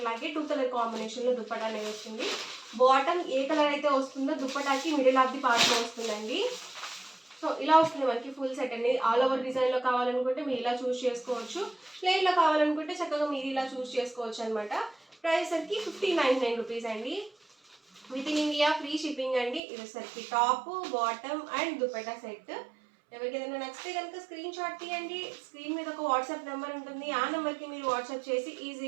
2 కలర్ కాంబినేషన్లో దుపట్టా అనేది వస్తుంది. బాటమ్ ఏ కలర్ అయితే వస్తుందో దుపట్టాకి మిడిల్ ఆఫ్ ది పార్ట్లో వస్తుందండి. సో ఇలా వస్తుంది మనకి ఫుల్ సెట్ అనేది. ఆల్ ఓవర్ డిజైన్లో కావాలనుకుంటే మీరు ఇలా చూస్ చేసుకోవచ్చు, ప్లెయిన్లో కావాలనుకుంటే చక్కగా మీరు ఇలా చూస్ చేసుకోవచ్చు అనమాట. ప్రైస్ సరికి 1599 రూపీస్ అండి. With in India free shipping అండి. ఇది సరికి top bottom and dupatta set. ఎవరికి ఏదైనా నచ్చితే కనుక స్క్రీన్ షాట్ తీయండి. స్క్రీన్ మీద ఒక వాట్సాప్ నెంబర్ ఉంటుంది, ఆ నెంబర్కి మీరు వాట్సాప్ చేసి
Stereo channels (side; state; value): left; drops out; at 19.6 s